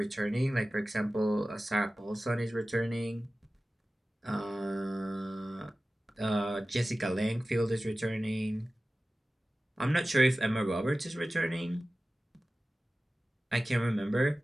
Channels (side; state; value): both; normal; correlation 0.96